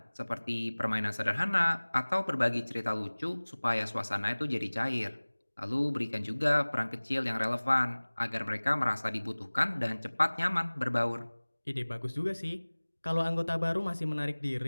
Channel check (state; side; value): inverted; both; correlation -1.00